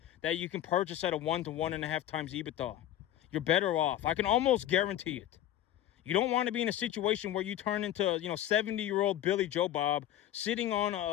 that you can purchase at a 1 to 1.5 times EBITDA. You're better off. I can almost guarantee it. You don't want to be in a situation where you turn into, 70-year-old Billy Joe Bob sitting on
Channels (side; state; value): right; quieter; 12.3 dB